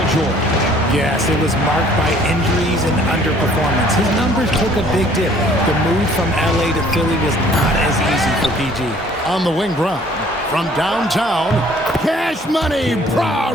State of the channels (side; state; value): both; normal; correlation 0.57